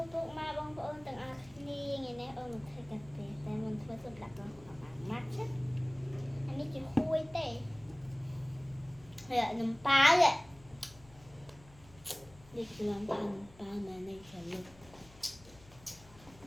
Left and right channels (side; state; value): left; noise; hum, 23 dB below the sound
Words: bốc ma bông ơn từng ác ni ngày nay ơn một thời cà phê tại mình thuê sụp đặt vào khoảng mắt chết anh ấy chỉ khui tệ rồi lại nằm phá vậy đi cứ làm thằng phá mà này phải lực